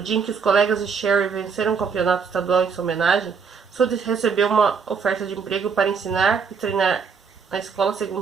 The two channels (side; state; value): left; quieter; 5.8 dB